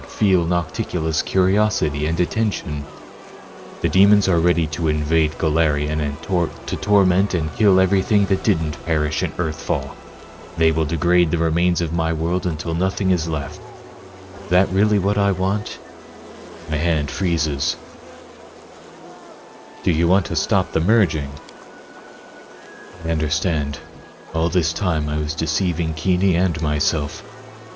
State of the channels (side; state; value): both; identical; correlation 1.00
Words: feel Nocticula's curiosity and attention. The demons are ready to invade Galarian and to torment and kill everything that didn't perish in Earthfall. They will degrade the remains of my world until nothing is left. Is that really what I want? My hand freezes. Do you want to stop the merging? I understand. All this time I was deceiving Kini and myself.